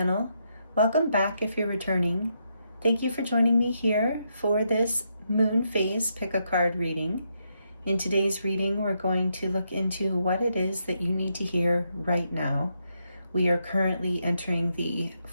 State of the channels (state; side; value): inverted; both; correlation -0.79